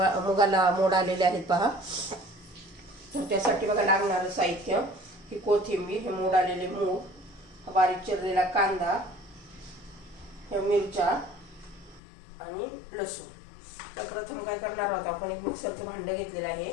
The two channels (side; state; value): right; drops out; at 12.0 s